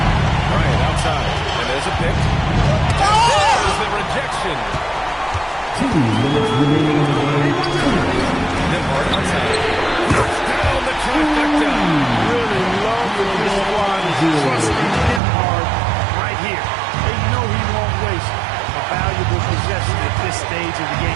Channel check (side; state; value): left; drops out; at 15.2 s